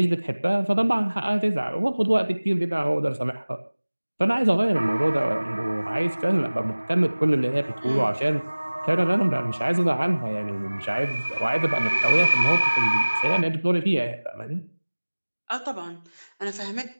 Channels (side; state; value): both; inverted; correlation -1.00